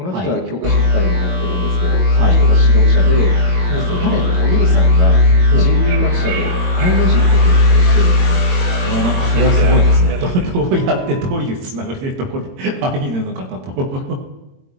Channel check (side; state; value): left; late; 22 ms